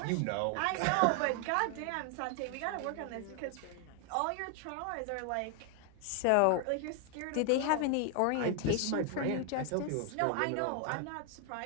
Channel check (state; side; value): different; both; correlation 0.00